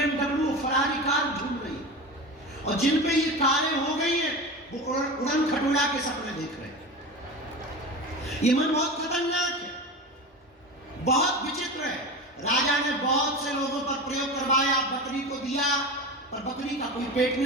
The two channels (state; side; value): normal; both; correlation 0.27